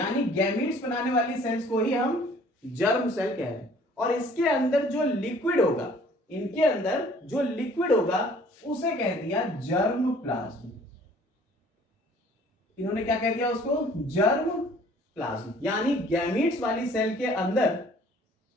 गैमीट्स बनाने वाली सेल्स को ही हम जर्म सेल कह रहे हैं। और इसके अंदर जो लिक्विड होगा, इनके अंदर जो लिक्विड होगा उसे कह दिया जर्म प्लाज्म। इन्होंने क्या कह दिया उसको? Germ plasm. यानी गैमीट्स वाली सेल के अंदर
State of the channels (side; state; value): both; normal; correlation 0.54